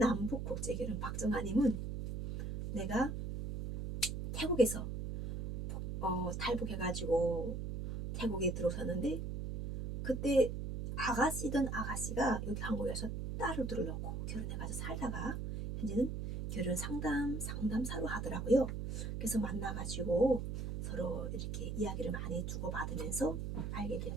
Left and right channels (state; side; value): noise; right; hum, 4 dB below the sound